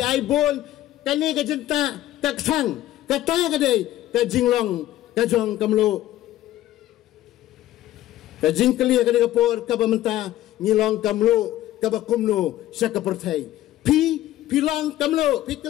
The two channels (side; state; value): right; quieter; 14.2 dB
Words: ai bon kani ka jenta tak sang kata ka dei ka jinglong ka jong kamlo ka jingkeli ka ni ka por ka bamenta ngilong kamlo ka bakumno sa ka perthai pi long kamlo pi